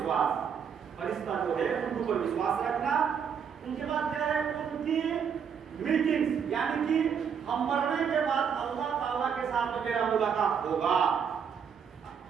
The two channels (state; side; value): quieter; left; 7.2 dB